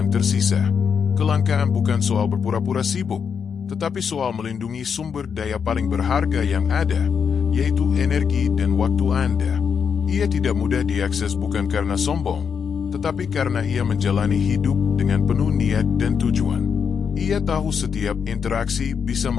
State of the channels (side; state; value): right; quieter; 6.7 dB